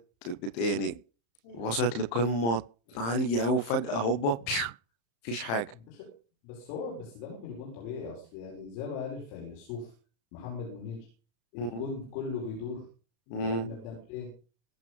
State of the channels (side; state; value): right; late; 35 ms